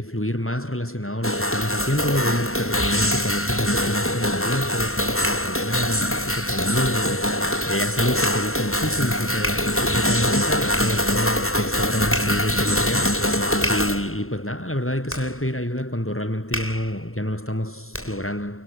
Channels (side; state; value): right; late; 0.62 ms